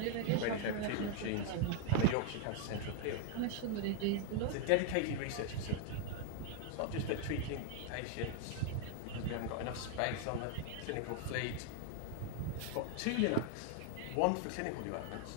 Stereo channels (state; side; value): different; both; correlation 0.00